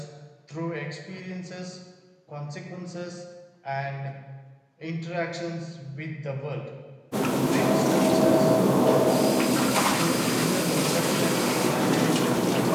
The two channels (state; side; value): identical; both; correlation 1.00